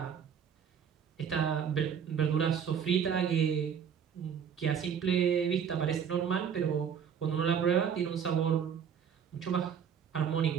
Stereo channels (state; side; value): quieter; left; 7.7 dB